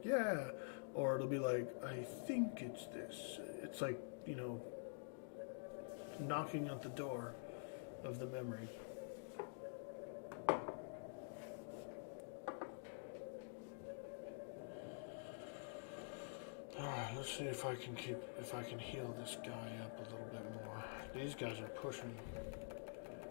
yeah, or it'll be like, I think it's this. It's like, you know, knocking at the door of the memory. Alright, let's see if I can heal this guy up a little bit more. These guys are pushing.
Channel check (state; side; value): silent; right; digital silence